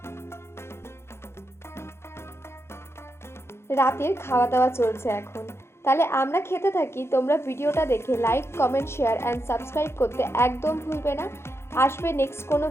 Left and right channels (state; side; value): late; right; 0.12 ms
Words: রাতের খাওয়া দাওয়া চলছে এখন। তাহলে আমরা খেতে থাকি, তোমরা ভিডিওটা দেখে like, comment, share and subscribe করতে একদম ভুলবে না। আসবে নেক্সট কোনো